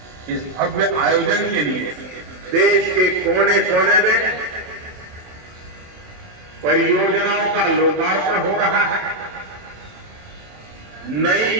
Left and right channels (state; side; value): late; left; 28 ms